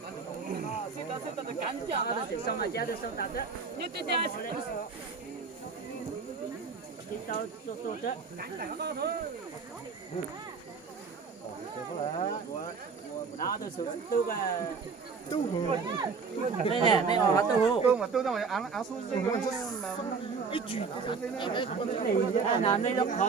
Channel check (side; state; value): left; quieter; 5.2 dB